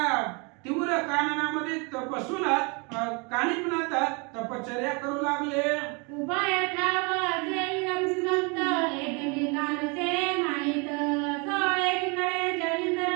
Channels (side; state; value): left; quieter; 31.6 dB